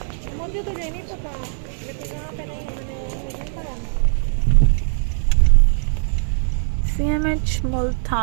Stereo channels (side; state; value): left; silent; 65 dB below the other